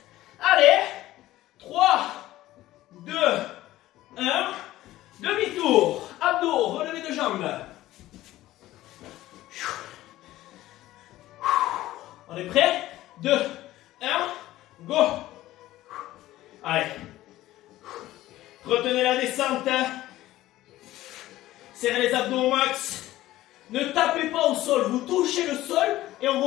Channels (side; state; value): right; quieter; 15.6 dB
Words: Allez. 3, 2, 1. Demi-tour. Abdos. Relevé de jambes. On est prêt? 2, 1, go. Allez. Retenez la descente. Serrez les abdos au max. Ne tapez pas au sol. Vous touchez le sol et on